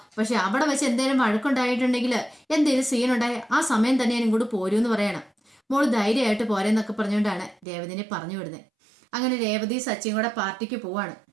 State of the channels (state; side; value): drops out; left; at 7.7 s